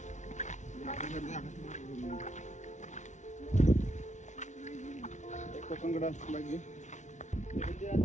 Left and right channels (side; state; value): right; late; 0.35 ms